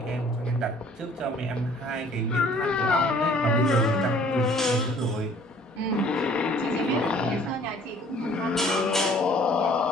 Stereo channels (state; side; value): normal; both; correlation 0.55